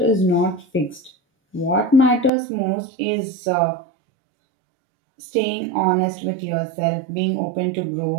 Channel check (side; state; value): left; drops out; at 2.3 s